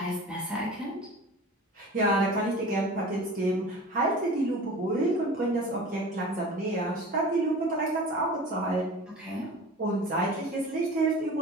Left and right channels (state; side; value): normal; both; correlation 0.38